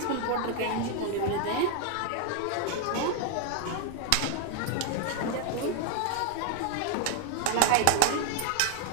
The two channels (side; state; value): both; different; correlation 0.00